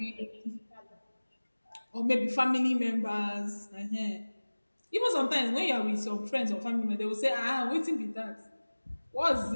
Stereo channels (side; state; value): both; inverted; correlation -1.00